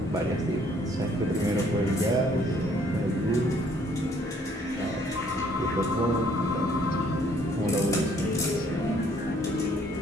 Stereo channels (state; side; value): normal; both; correlation 0.63